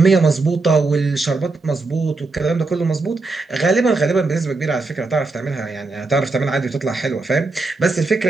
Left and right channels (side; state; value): left; quieter; 3.6 dB